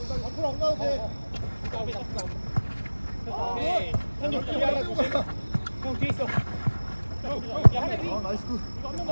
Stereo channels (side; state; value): both; inverted; correlation -1.00